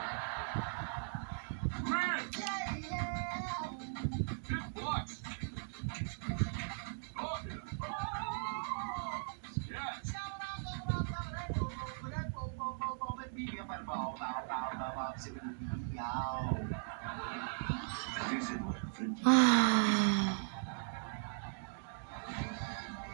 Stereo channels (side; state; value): left; silent; digital silence